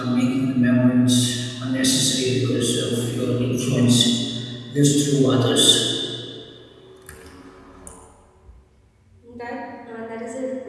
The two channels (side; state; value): both; identical; correlation 1.00